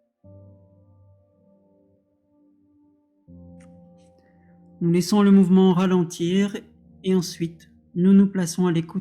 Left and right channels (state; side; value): identical; both; correlation 1.00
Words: Nous laissons le mouvement ralentir et ensuite, nous nous plaçons à